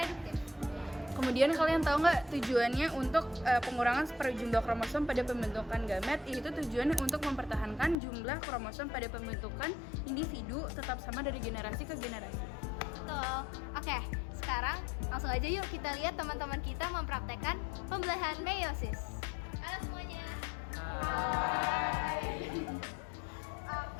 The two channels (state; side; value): drops out; right; at 8.0 s